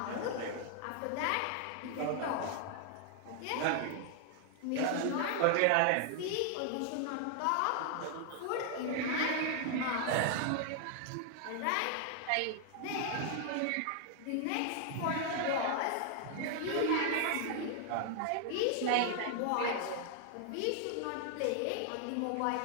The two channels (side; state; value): both; different; correlation 0.00